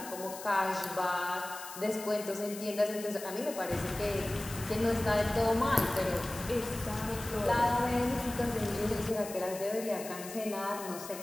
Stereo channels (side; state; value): left; noise; hiss, 12 dB below the sound